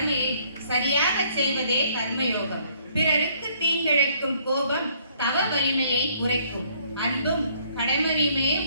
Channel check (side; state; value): both; inverted; correlation -0.64